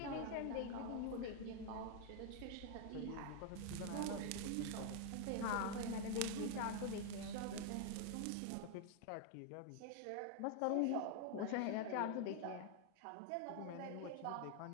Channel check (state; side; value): different; both; correlation 0.00